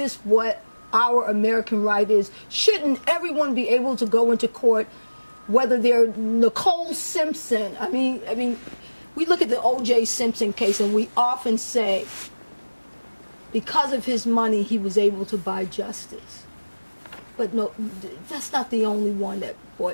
what our American right is? Shouldn't everyone be able to go into court, whether they're Nicole Simpson? I mean, we look at the O.J. Simpson case and we often say, because of his money, he was able to buy justice. But no, that's not the only one that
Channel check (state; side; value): inverted; both; correlation -1.00